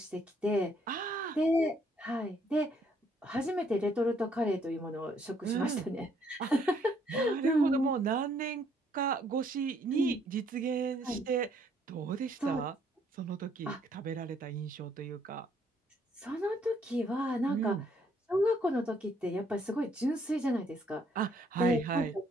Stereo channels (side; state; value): both; normal; correlation 0.67